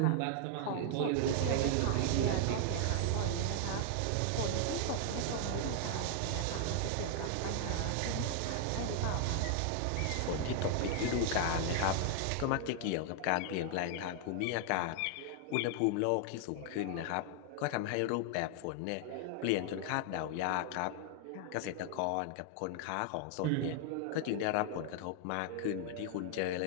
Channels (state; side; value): different; both; correlation 0.00